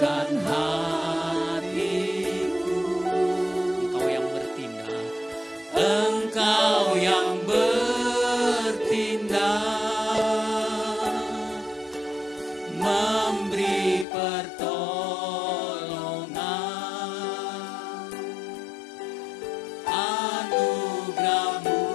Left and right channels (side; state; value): right; drops out; at 14.1 s